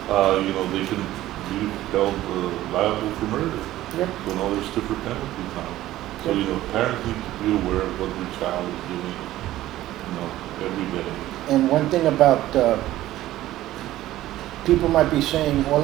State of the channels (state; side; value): quieter; left; 14.9 dB